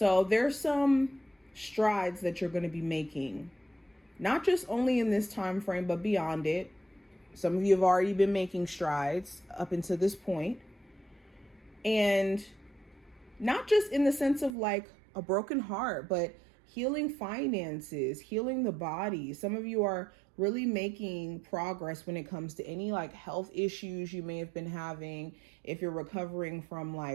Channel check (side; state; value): left; drops out; at 14.6 s